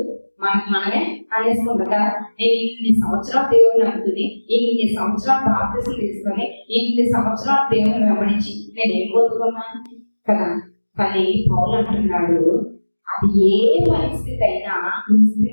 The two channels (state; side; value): inverted; both; correlation -1.00